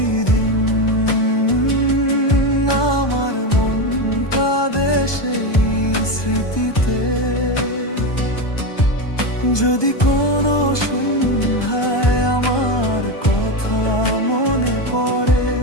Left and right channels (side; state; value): right; late; 1.2 ms